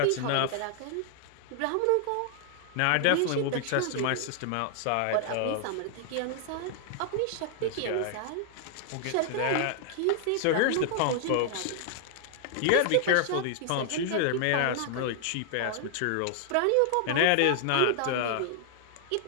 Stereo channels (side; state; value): both; different; correlation 0.00